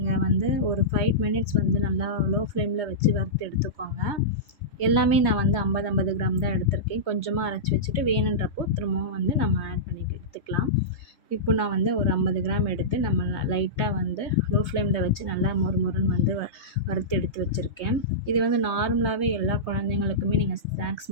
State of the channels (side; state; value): right; late; 3.2 ms